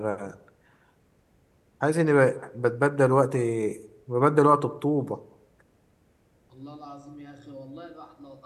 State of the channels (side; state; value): both; identical; correlation 1.00